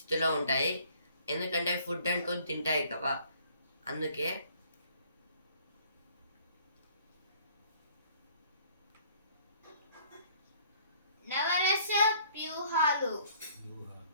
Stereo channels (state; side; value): inverted; both; correlation -0.58